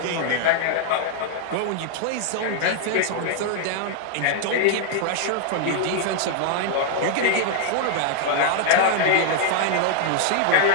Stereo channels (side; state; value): both; different; correlation 0.00